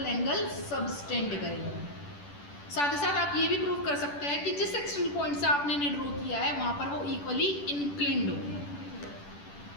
एंगल सबटेंड करेंगे। साथ ही साथ आप ये भी प्रूव कर सकते हैं कि जिस एक्सटर्नल पॉइंट से आपने ड्रॉ किया है वहां पर वो इक्वली इंक्लिन्ड हो।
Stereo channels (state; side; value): late; right; 10 ms